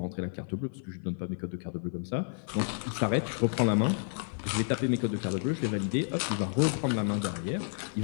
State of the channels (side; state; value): right; silent; 57 dB below the other